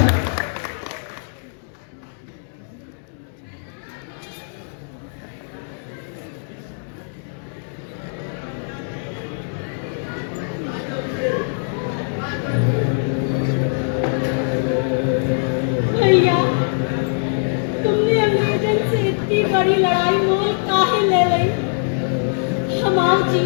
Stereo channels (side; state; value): right; silent; 65 dB below the other